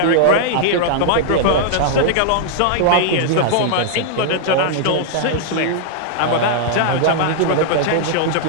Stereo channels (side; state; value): both; different; correlation -0.01